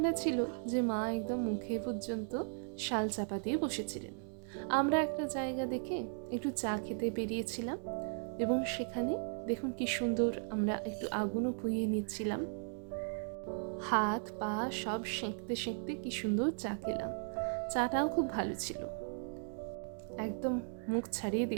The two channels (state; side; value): silent; left; 53 dB below the other